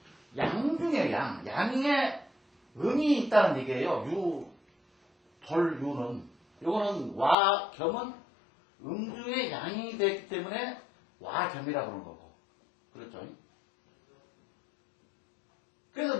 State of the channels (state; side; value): drops out; right; at 7.4 s